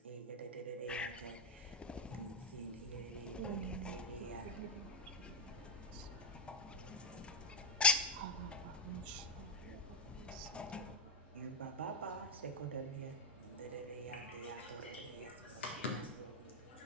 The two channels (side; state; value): both; normal; correlation 0.03